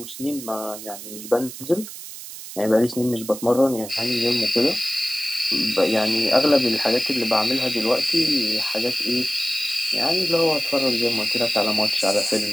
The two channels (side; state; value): right; noise; hiss, 12 dB below the sound